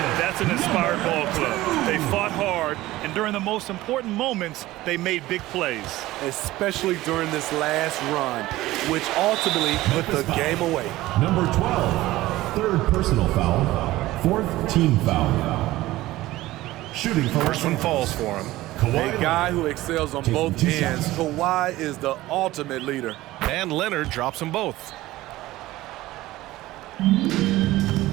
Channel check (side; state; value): left; quieter; 17.1 dB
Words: That's an inspired ball club. They fought hard, and during the most important moments, they made big plays. Especially during this last run, which ultimately put the game away. Number 12. third personal foul, fourth team foul. Shooting for First one falls for him. A guy who excels on both ends. Kawhi is the ultimate leader. And Leonard drops them both.